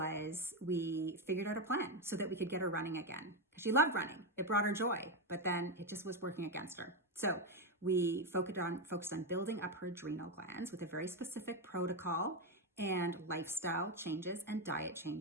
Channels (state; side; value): normal; both; correlation 0.08